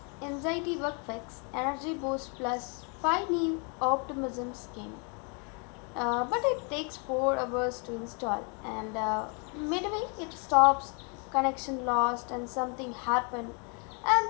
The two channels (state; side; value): quieter; right; 36.3 dB